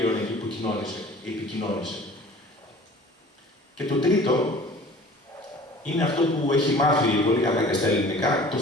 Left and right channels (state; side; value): normal; both; correlation 0.46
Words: εκεί που επικοινώνησε. Και το τρίτο είναι αυτό που έχει μάθει πολύ καλά και στα ελληνικά, το